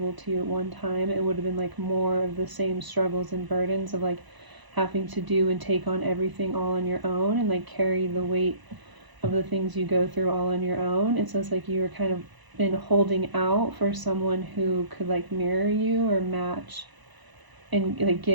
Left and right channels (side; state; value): left; late; 1.0 ms